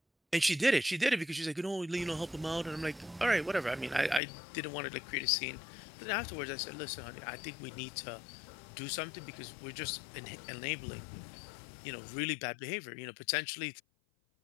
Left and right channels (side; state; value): right; drops out; at 4.2 s